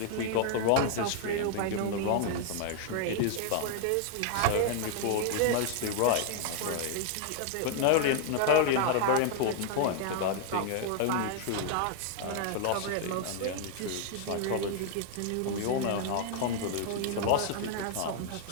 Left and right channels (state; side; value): different; both; correlation 0.00